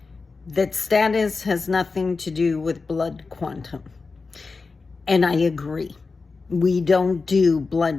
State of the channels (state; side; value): quieter; right; 4.3 dB